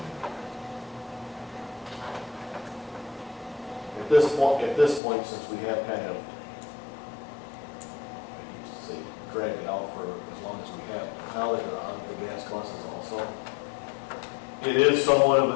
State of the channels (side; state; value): right; drops out; at 5.0 s